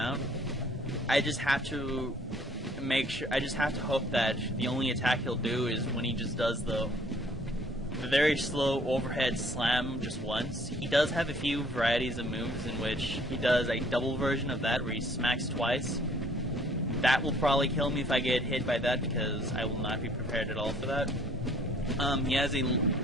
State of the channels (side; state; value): both; normal; correlation 0.59